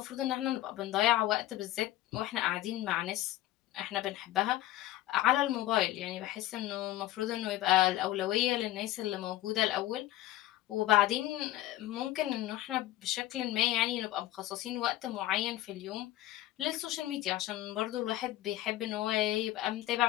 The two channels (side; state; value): right; quieter; 15.1 dB